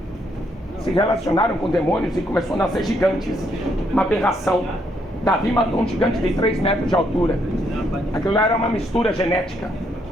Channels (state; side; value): normal; both; correlation 0.73